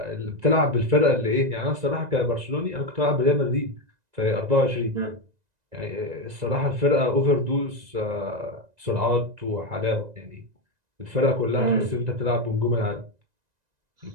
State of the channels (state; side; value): late; left; 1.9 ms